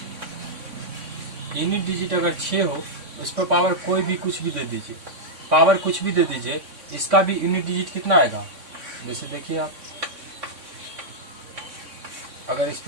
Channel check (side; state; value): left; late; 3.6 ms